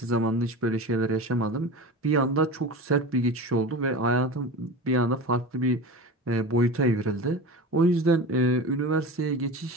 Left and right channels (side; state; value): both; normal; correlation 0.29